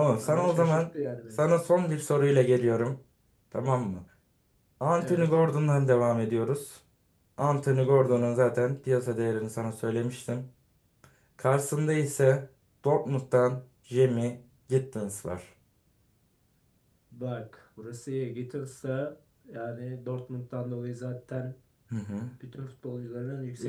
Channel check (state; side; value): identical; both; correlation 1.00